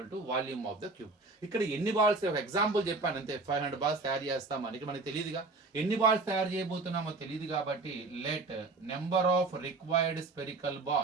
to volume of the cube. ఇక్కడ ఎన్ని balls, ఒక example చెప్పాను అంతే. 500 balls తయారు చేస్తామని మనకి తెలియదుగా, ఎన్ని బాల్స్ తయారు చేయబోతున్నామో తెలియదు కాబట్టి let number of required spherical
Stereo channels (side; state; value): left; quieter; 3.6 dB